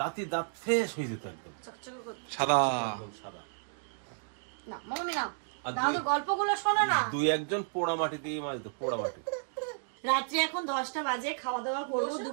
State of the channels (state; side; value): silent; left; digital silence